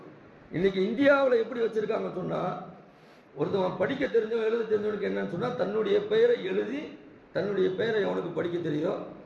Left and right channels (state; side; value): identical; both; correlation 1.00